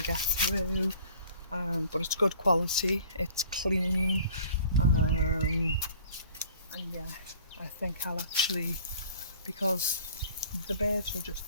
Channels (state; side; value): inverted; both; correlation -0.50